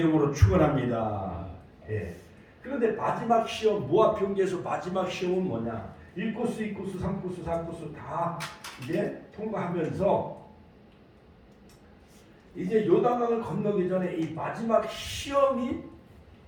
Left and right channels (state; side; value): identical; both; correlation 1.00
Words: 축원합니다. 그런데 마지막 시험, 모압 평지에서 마지막 시험은 뭐냐? 1코스, 2코스, 3코스, 4코스 다 이제 통과하면서 이제 요단강을 건너기 전에 이 마지막 시험이